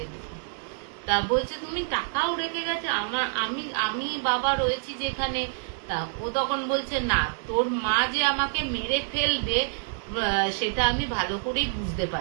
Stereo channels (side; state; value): left; silent; digital silence